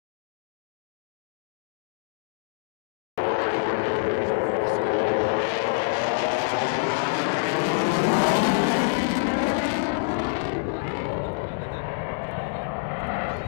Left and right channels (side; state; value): right; silent; digital silence